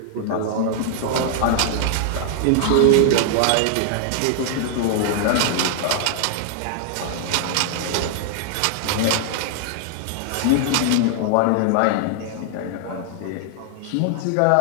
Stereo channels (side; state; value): both; different; correlation 0.00